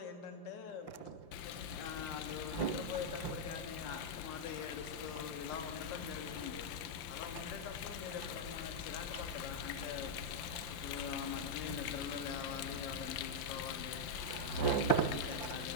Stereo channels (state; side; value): late; right; 6.0 ms